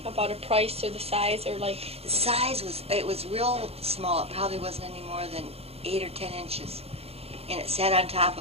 About a price or the size, or like... The size was real small. It probably wasn't any more than 8 or 10 inches. And it sat on top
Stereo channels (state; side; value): late; left; 0.29 ms